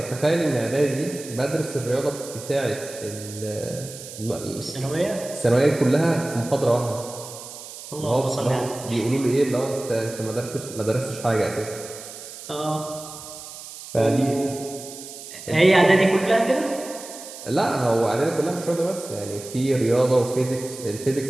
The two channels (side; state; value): right; noise; hiss, 13 dB below the sound